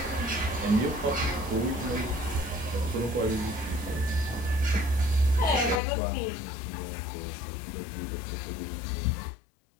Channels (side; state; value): right; drops out; at 5.8 s